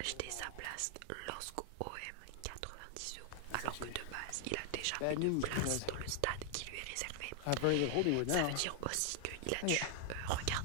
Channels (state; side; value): different; both; correlation 0.00